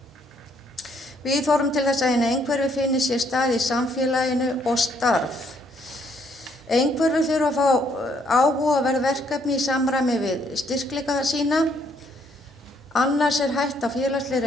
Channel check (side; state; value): both; normal; correlation 0.68